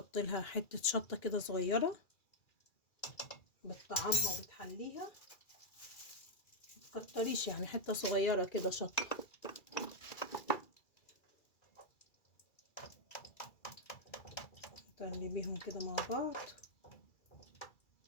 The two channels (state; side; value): late; right; 2.3 ms